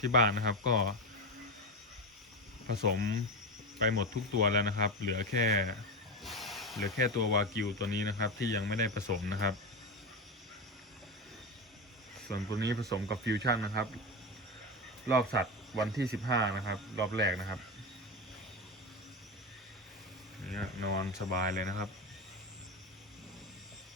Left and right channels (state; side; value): normal; both; correlation 0.18